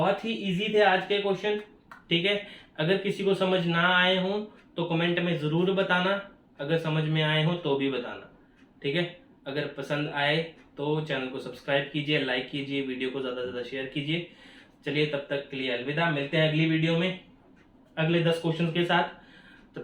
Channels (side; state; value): both; identical; correlation 1.00